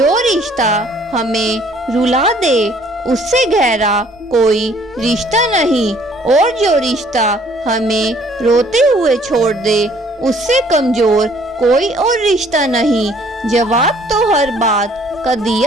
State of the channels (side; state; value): both; normal; correlation 0.59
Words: रिश्ता हमें रुला दे उससे गहरा कोई रिश्ता नहीं, और जो रिश्ता हमें रोते हुए छोड़ दे उससे कमजोर कोई और रिश्ता नहीं। जवाब तो हर बात का